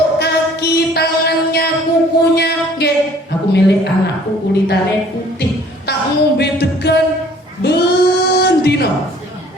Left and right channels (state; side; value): normal; both; correlation 0.55